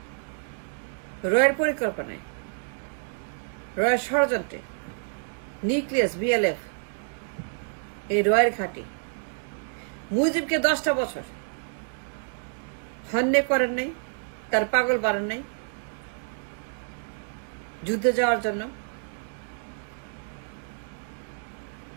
রয়ের পরিকল্পনায়, রয়ের ষড়যন্ত্রে, নিউক্লিয়াস, বিএলএফ, এই রয়ের ঘাঁটি মুজিবকে 10টা বছর হন্যে করেন নাই, তার পাগল বানান নাই যুদ্ধে যাওয়ার জন্য?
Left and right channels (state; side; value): silent; left; digital silence